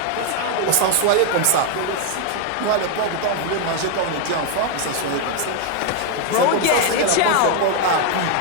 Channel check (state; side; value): different; both; correlation 0.01